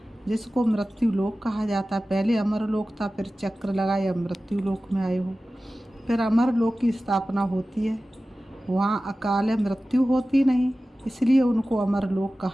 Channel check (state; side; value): normal; both; correlation 0.96